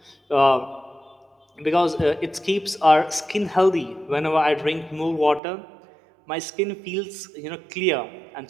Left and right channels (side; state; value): left; drops out; at 5.4 s